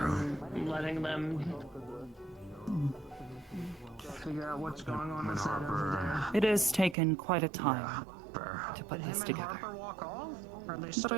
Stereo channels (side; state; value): left; drops out; at 7.0 s